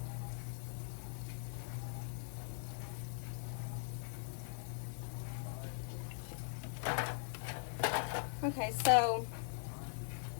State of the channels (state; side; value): silent; right; digital silence